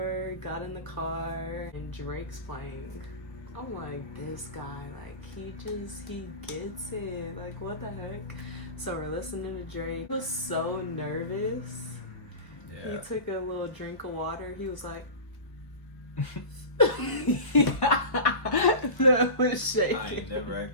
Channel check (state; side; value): late; right; 1.0 ms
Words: got in the car, and Drake's playing. I'm like, this guy, like he gets it. Like what the heck? So we're listening to Drake. He was so nervous. Yeah. He took a little drink of water. He was like. That was shaking. I ain't never